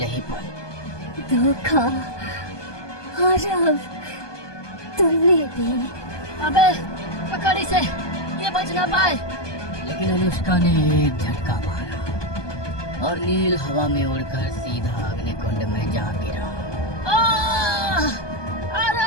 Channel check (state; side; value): late; right; 1.2 ms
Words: ही पल धोखा। आरव, तुमने भी। अबे पकड़ इसे, ये बच ना पाए। लेकिन अनुष्का ने एक झटका मारा और नील हवा में उड़कर सीधा अग्निकुंड में जा गिरा।